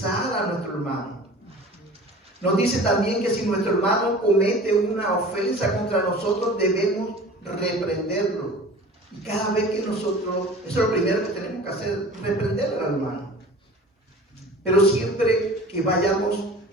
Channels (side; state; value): both; normal; correlation 0.42